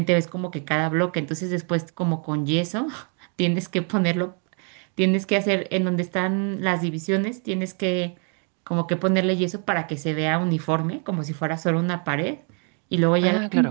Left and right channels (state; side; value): quieter; left; 39.7 dB